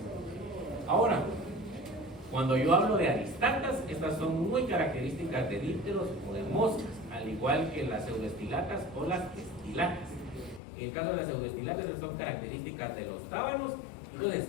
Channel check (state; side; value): drops out; right; at 10.6 s